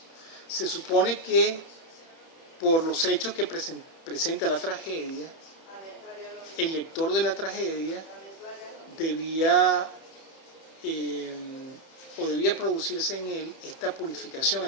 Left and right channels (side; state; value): right; late; 30 ms